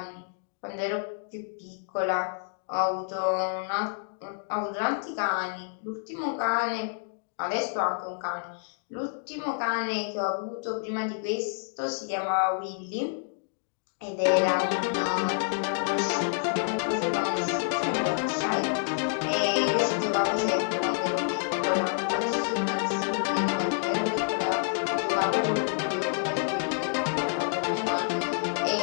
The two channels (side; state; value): right; silent; digital silence